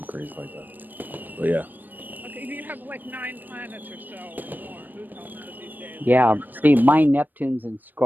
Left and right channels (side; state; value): left; late; 0.090 ms